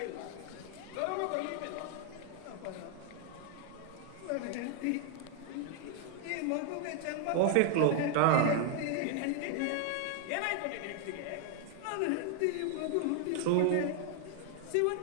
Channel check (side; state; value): both; different; correlation 0.00